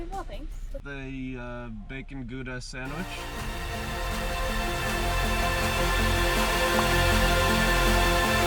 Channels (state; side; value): identical; both; correlation 1.00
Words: well, thanks. The bacon Gouda sandwich.